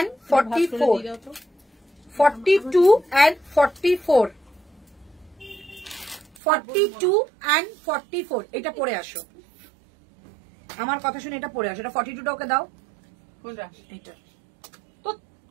44, 42 and 44, 42 and 44। এটা পরে আসো, আমার কথা শুনে এটা পরে আসো। এটা 42টা ওকে দাও, কোনটা? এটা তো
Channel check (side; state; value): left; drops out; at 6.4 s